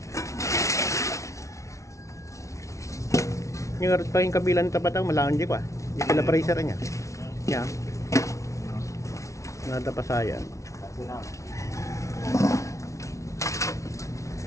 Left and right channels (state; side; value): late; right; 0.14 ms